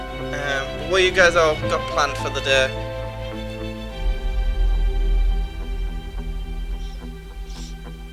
What you guys all got planned for the day?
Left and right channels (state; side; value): identical; both; correlation 1.00